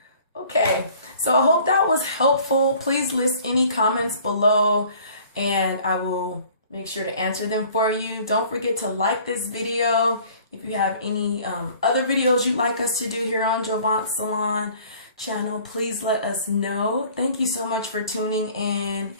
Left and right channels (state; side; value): inverted; both; correlation -0.52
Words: Okay, so I hope that was helpful. Please list any comments below and I will make sure to answer them for you. Don't forget to like this video. If you have any other videos you'd like us to do here on Jovance Salon channel, please let us know. Thank you so much for tuning in